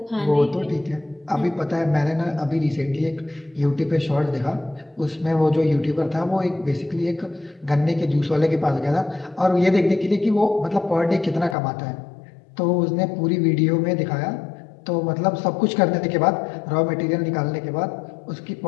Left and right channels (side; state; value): right; drops out; at 11.6 s